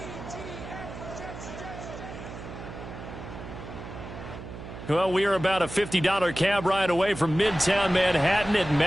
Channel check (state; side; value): noise; right; hum, 11 dB below the sound